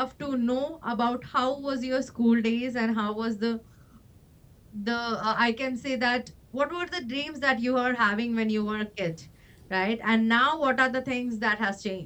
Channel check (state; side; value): identical; both; correlation 1.00